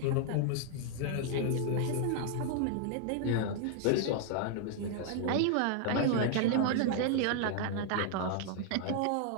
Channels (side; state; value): both; different; correlation 0.00